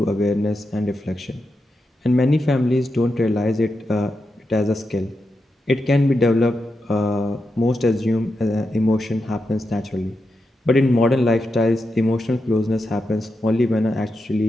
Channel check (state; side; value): normal; both; correlation 0.87